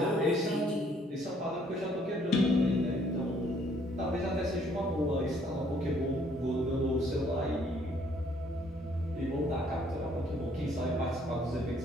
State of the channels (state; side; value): normal; both; correlation 0.64